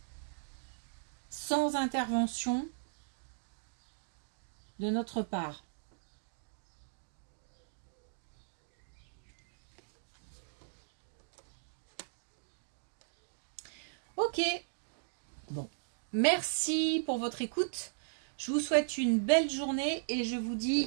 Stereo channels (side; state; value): left; silent; digital silence